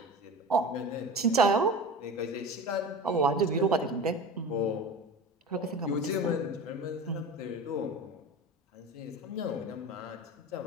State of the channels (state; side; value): normal; both; correlation 0.33